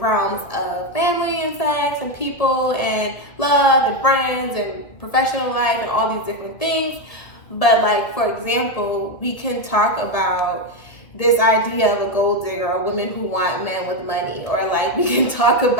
of family and sex and people and love and friends and professional life and all these different things. But like, for example, we can talk about this idea of a gold digger or women who want men with money, or like we can talk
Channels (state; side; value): late; right; 1.8 ms